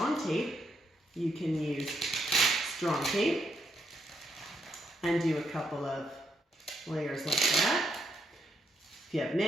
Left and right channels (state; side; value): normal; both; correlation 0.77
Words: tape, you can use strong tape and do a couple of layers like that. If you have